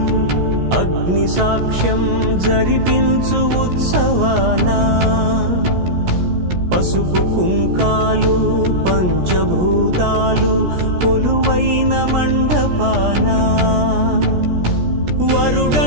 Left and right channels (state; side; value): late; left; 17 ms